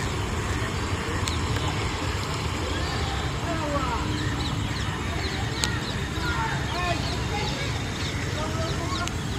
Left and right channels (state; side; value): identical; both; correlation 1.00